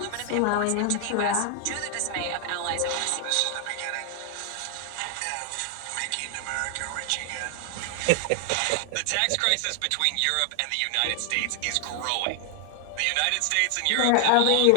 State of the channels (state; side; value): different; both; correlation 0.00